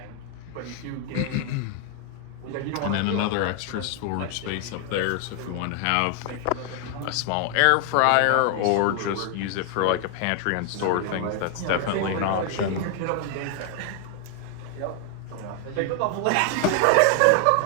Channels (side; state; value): both; different; correlation 0.00